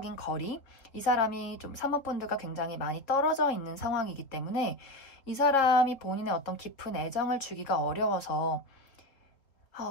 거리, 이 사람이 좀 3번 분들과 굉장히 많이 떨어져 있는 상황이기 때문에 이 사람이 본인의 어떤 깊은 애정을 주기가 어려워서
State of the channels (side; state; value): right; late; 3.9 ms